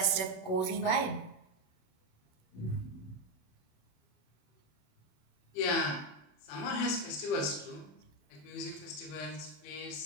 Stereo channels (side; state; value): right; late; 27 ms